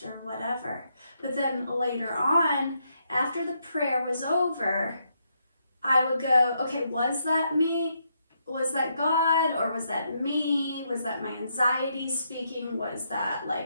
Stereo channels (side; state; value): both; inverted; correlation -0.78